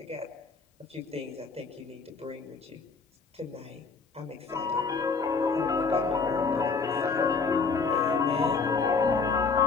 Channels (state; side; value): quieter; right; 4.8 dB